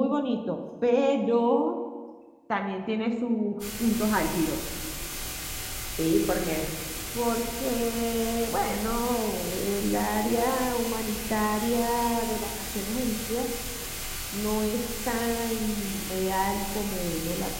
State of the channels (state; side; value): identical; both; correlation 1.00